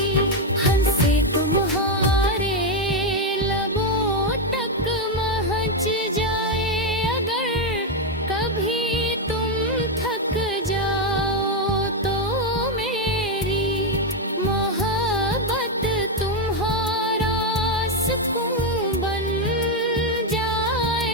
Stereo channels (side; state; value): both; normal; correlation 0.05